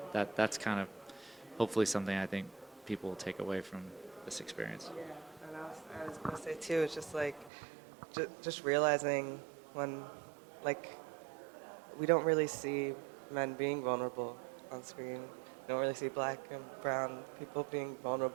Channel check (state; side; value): drops out; left; at 7.5 s